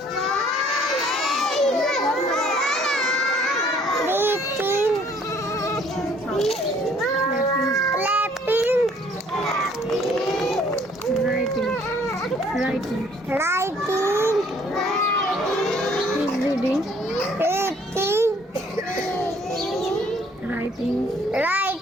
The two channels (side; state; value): both; normal; correlation 0.60